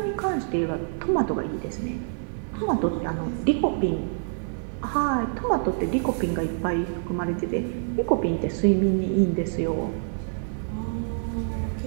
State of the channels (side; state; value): left; silent; digital silence